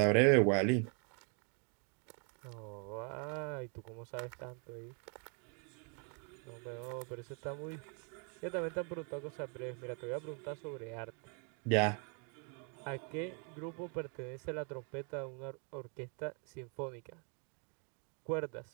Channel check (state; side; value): quieter; left; 39.1 dB